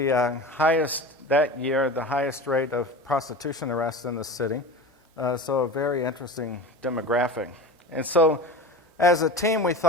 highest, that year, the highest rate of prostitution arrests in the city. So a very interesting demographic. And so as a team, we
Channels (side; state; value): both; normal; correlation 0.32